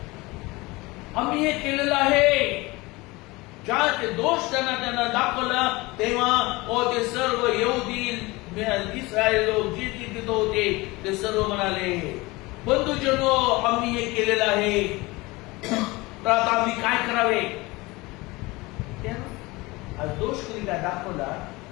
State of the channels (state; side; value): quieter; right; 22.5 dB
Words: आम्ही हे केलेलं आहे. ज्या ते दोष त्यांना दाखवला, तेव्हा ते सर्व यहुदी इस्रायल लोक जे तिथे होते ते सर्व म्हणाले, बंधुजनो, आम्ही हे केलेलं आहे, तर आता आम्ही काय करावे. आज दोष कधी काय दाखवला